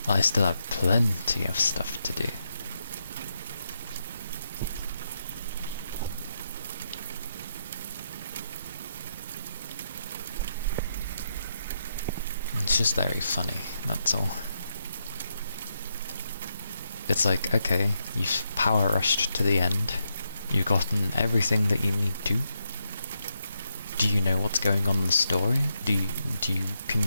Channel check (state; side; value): inverted; both; correlation -0.82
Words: I still have plenty of stuff to do. It's just very funny, that's all. It's like, okay, you've power rushed to the end, you've gotten everything that you need to. Do you know what's going on in the story? Can